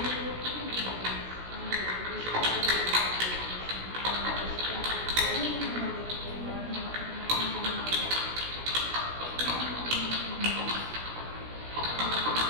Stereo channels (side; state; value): left; late; 16 ms